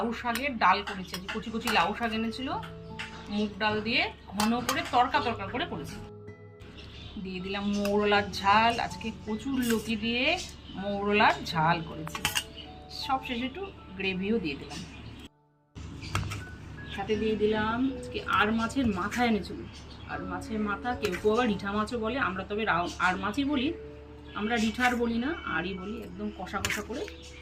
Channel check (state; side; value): identical; both; correlation 1.00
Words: শাকের ডাল করেছি, যে কুচি কুচি লাউ শাক এনেছিল, মুগ ডাল দিয়ে ঘন করে তরকা তরকা করে করেছি। দিয়ে দিলাম মৌরলার ঝাল, আজকে কচুর লতি দিয়ে মৌরলার ঝাল করেছি। সব শেষে একটু গ্রেভিও দিয়ে দিলাম, সাথে দিয়ে দিলাম আজকে আর মাছের মাথা এনেছিল। আর মাছের মাথা কেউ কেউ আবার রিঠা মাছও বলে, আমরা তবে আর মাছই বলি, আমরা রিঠার বলি না, আরই বলি। একদম কষা কষা করে